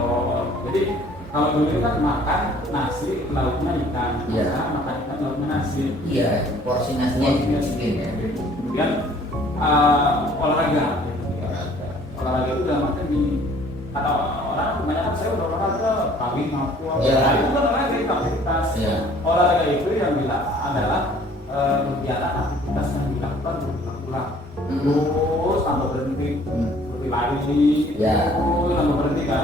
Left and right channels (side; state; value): both; normal; correlation 0.55